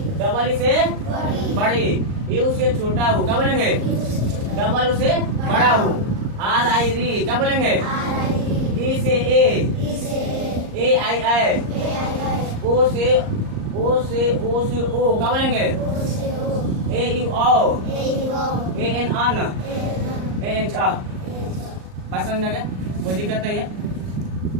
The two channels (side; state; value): left; late; 38 ms